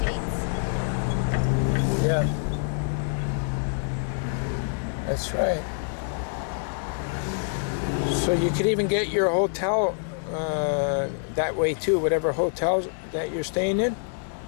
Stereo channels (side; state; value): right; silent; 56 dB below the other